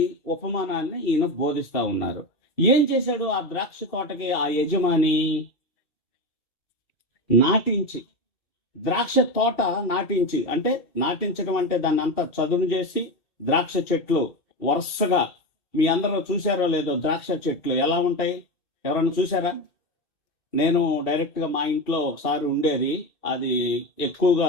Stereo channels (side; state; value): right; late; 2.7 ms